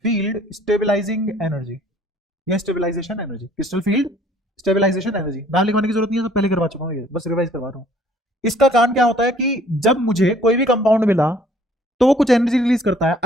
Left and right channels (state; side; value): normal; both; correlation 0.58